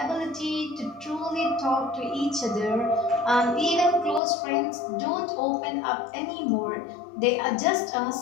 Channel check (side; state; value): right; drops out; at 4.2 s